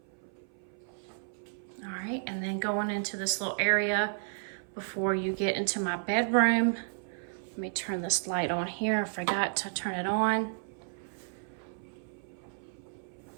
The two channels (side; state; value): left; silent; 56 dB below the other